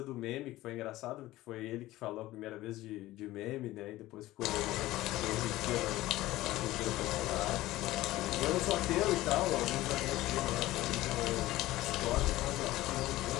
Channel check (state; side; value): quieter; right; 16.8 dB